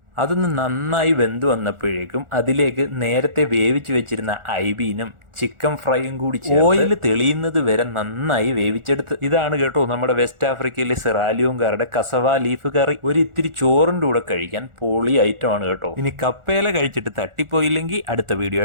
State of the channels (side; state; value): left; late; 1.4 ms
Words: അതൊന്ന് നന്നായി വെന്ത് വന്നപ്പോഴേക്കും അതിലേക്ക് നേരത്തെ വേവിച്ച് വെച്ചിരുന്ന ഐബീനും ചിക്കൻ ഫ്രൈയും കൂടി ഓയിൽ തെളിയുന്നത് വരെ നന്നായി വേവിച്ചെടുത്ത്. ഇതാണ് കേട്ടോ നമ്മുടെ വെസ്റ്റ് ആഫ്രിക്കയിലെ സിറാലിയോങ്കാരുടെ കസവ ലീഫ് കറി. ഒരു ഇത്തിരി ചോറിൻ്റെ കൂടെ കഴിക്കാൻ പൊളി ഐറ്റമാണ് കേട്ടോ. ഇനി കപ്പയില കഴിച്ചിട്ട് തട്ടിപ്പോയില്ലെങ്കിൽ അടുത്ത വീഡിയോ